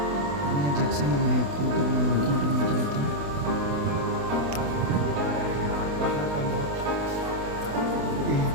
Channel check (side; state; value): left; late; 28 ms